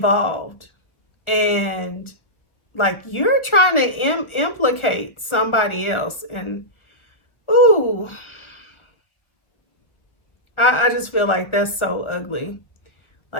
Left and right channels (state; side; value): late; right; 1.1 ms